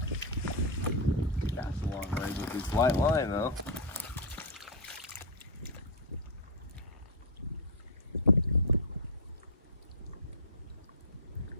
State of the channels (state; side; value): normal; both; correlation -0.04